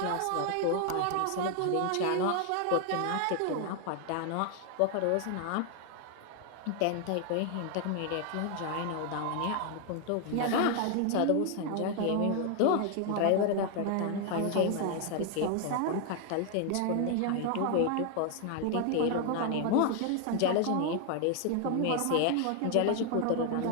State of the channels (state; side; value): different; both; correlation 0.00